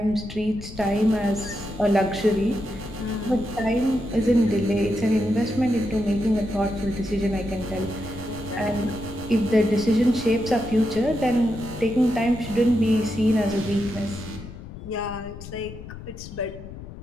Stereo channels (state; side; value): noise; left; rumble, 13 dB below the sound